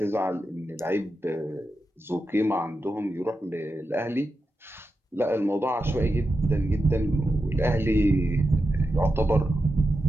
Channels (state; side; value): normal; both; correlation 0.89